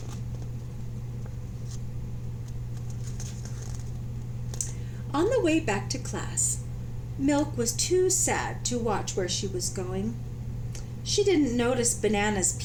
On the way back to class, Milk was too sad to watch where she was going. She didn't notice Banana's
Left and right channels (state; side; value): identical; both; correlation 1.00